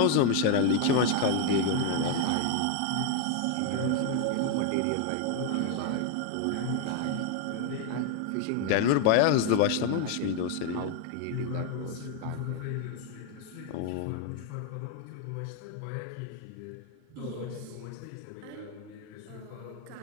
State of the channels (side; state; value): both; different; correlation 0.01